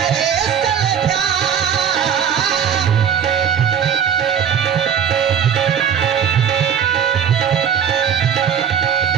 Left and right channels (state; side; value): quieter; left; 8.4 dB